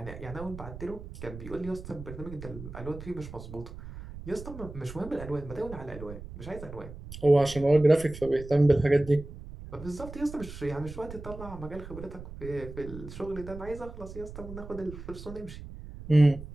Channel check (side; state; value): right; noise; rumble, 12 dB below the sound